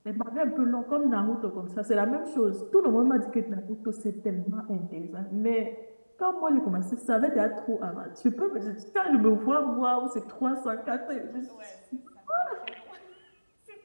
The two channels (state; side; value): inverted; both; correlation -1.00